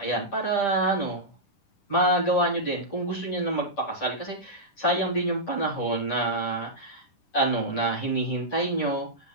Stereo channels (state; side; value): late; right; 10 ms